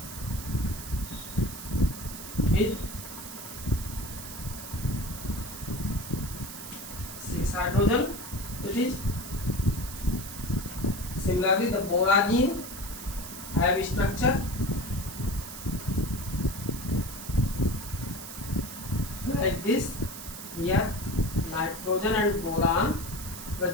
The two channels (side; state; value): right; noise; hiss, 10 dB below the sound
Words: with 6 hydrogen. It is similarly the boragine have structure like this. Here nitrogen and boron